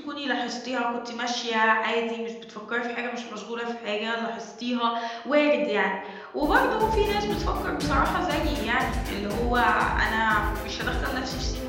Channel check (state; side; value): identical; both; correlation 1.00